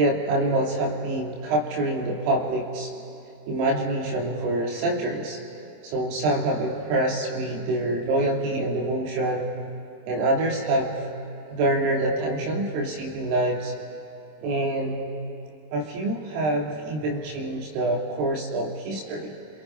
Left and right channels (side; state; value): left; late; 26 ms